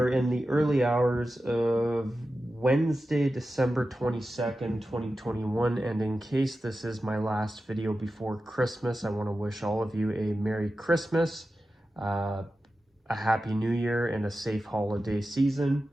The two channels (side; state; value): both; normal; correlation 0.92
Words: in the early hours of Wednesday, December 22nd, 2021. And in case this is my last video before Christmas, I want to wish all of you a Merry Christmas, a Happy New Year, and a safe holiday season.